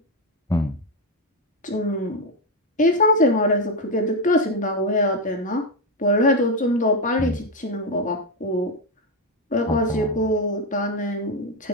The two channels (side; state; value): both; normal; correlation 0.08